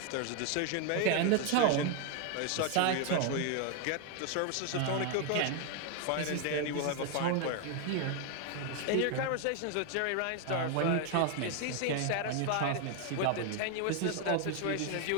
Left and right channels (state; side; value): different; both; correlation 0.01